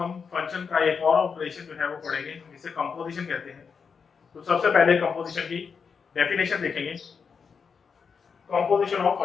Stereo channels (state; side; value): quieter; right; 5.9 dB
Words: हम फंक्शन का एक और ऑपरेशन जो है वो पढ़ेंगे जिसे कंपोजिशन कहते हैं। तो सबसे पहले कंपोजिशन की डेफिनेशन देखेंगे। Composition of